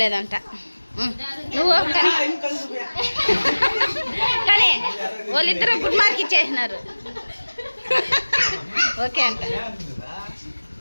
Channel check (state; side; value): inverted; both; correlation -1.00